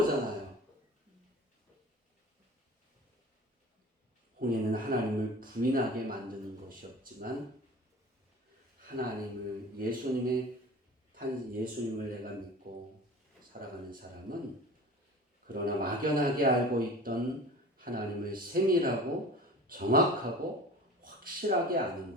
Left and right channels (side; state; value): both; normal; correlation 0.39